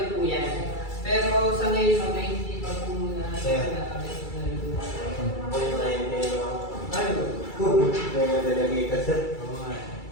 po yan. Pero sa ngayon, hindi pa po muna.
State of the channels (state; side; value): late; right; 2.3 ms